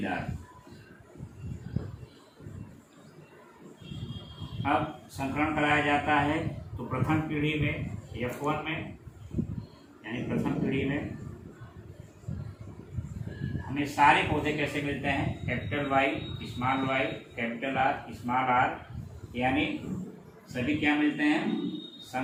अब संकरण कराया जाता है तो प्रथम पीढ़ी में F1 में, यानी प्रथम पीढ़ी में हमें सारे पौधे कैसे मिलते हैं? Capital Y small Y capital R small R, यानी सभी क्या मिलते हैं?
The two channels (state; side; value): identical; both; correlation 1.00